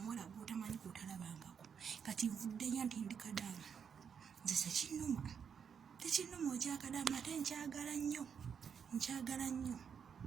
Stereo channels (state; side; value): quieter; left; 7.1 dB